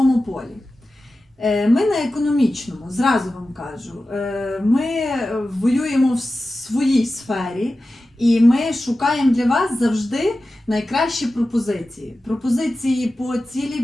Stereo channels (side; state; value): both; normal; correlation 0.94